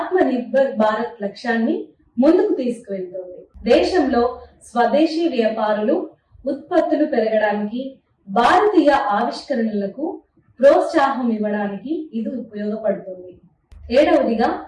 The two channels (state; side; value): identical; both; correlation 1.00